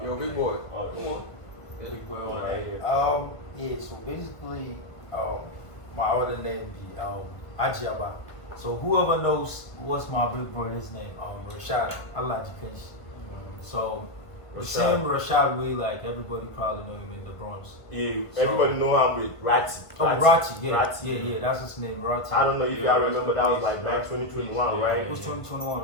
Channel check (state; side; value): late; right; 1.5 ms